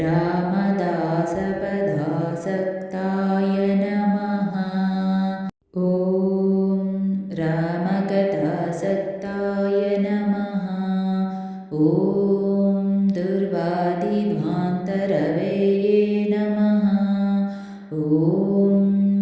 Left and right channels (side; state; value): both; identical; correlation 1.00